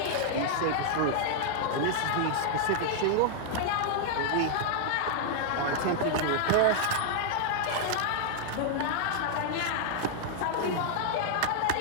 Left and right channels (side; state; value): both; different; correlation -0.01